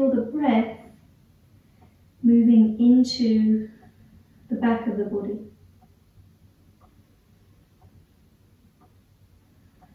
the breath moving into the back of the body.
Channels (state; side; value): identical; both; correlation 1.00